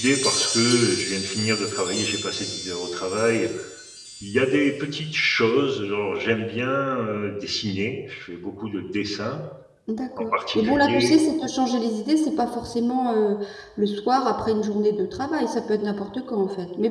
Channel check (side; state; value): both; identical; correlation 1.00